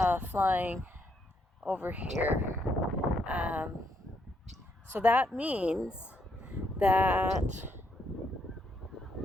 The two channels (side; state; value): both; normal; correlation 0.75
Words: flying over here. So that means that